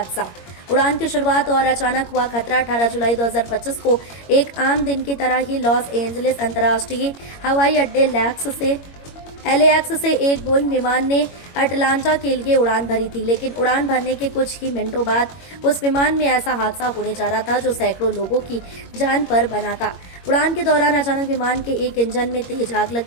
उड़ान की शुरुआत और अचानक हुआ खतरा। 18 जुलाई 2025 को एक आम दिन की तरह ही लॉस एंजलिस अंतर्राष्ट्रीय हवाई अड्डे LAX से एक बोइंग विमान ने अटलांटा के लिए उड़ान भरी थी, लेकिन उड़ान भरने के कुछ ही मिनटों बाद उस विमान में ऐसा हादसा होने जा रहा था जो सैकड़ों लोगों की जान पर बना था। उड़ान के दौरान अचानक विमान के एक इंजन में तेज आग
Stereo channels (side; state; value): right; late; 21 ms